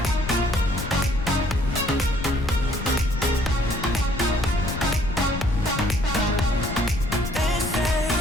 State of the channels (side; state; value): left; noise; rumble, 7 dB below the sound